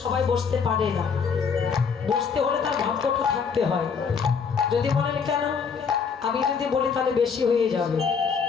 সবাই বসতে পারে না, বসতে হলে তার ভাগ্যটা থাকতে হয়। যদি বলেন কেন, আমি যদি বলি তাহলে বেশি হয়ে যাবে।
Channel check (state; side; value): quieter; right; 6.0 dB